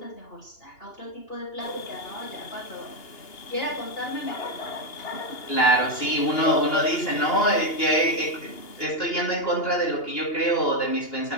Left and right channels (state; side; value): late; right; 2.8 ms